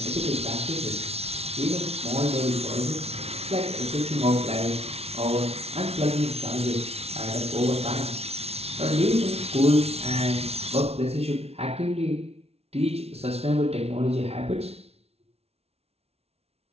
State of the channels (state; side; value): late; left; 0.30 ms